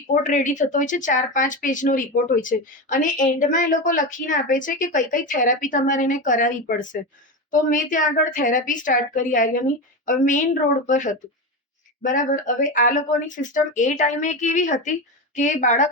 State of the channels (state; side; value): normal; both; correlation 0.18